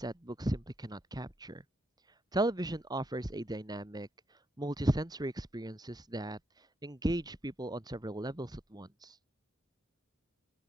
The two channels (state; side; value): normal; both; correlation 0.79